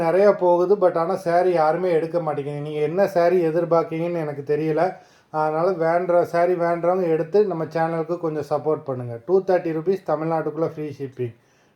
நிறையா போகுது, பட் ஆனால் சாரீ யாருமே எடுக்க மாட்டேங்குது. நீங்கள் என்ன சாரீ எதிர்பார்க்கீங்கன்னு எனக்கு தெரியல. அதனால் சாரீ வேண்டுறவங்க எடுத்து நம்ம சேனலுக்கு கொஞ்சம் சப்போர்ட் பண்ணுங்கள். 230 ருபீஸ், தமிழ்நாட்டுக்குள்ளே free shipping.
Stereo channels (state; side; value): identical; both; correlation 1.00